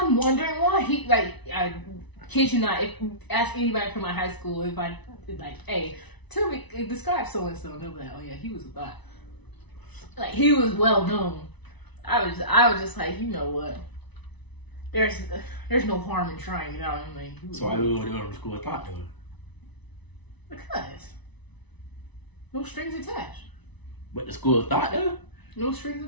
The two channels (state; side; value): late; right; 1.0 ms